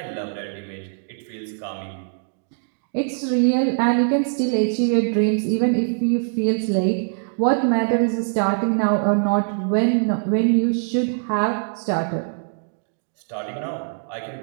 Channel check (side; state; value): left; silent; digital silence